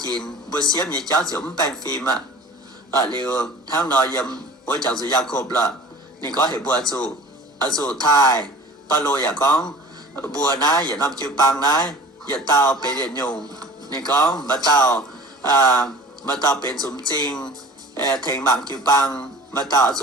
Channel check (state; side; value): normal; both; correlation 0.42